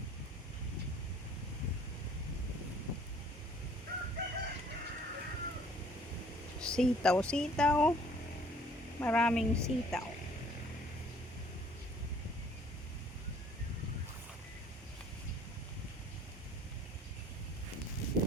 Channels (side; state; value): both; normal; correlation 0.57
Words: Sitaw, sitaw. Maraming sitaw.